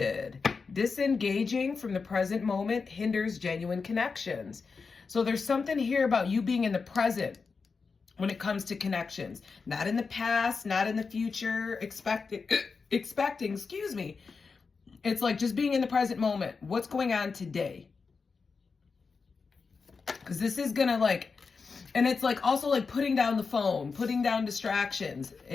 Disengaging from the present moment hinders genuine connections. So there's something here about you being in the present when it comes to connections. Not in the past, not in the future, expecting, excuse me. It's like just being in the present moment. What's going on today? Because this is going to like, and it's like also like putting down the phone, putting down distractions,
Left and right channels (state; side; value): quieter; right; 4.9 dB